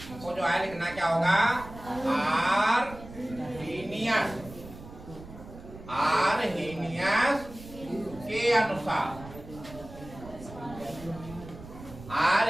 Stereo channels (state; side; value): noise; right; rumble, 16 dB below the sound